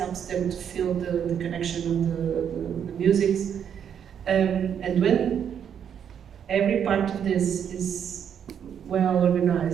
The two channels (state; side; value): quieter; left; 8.4 dB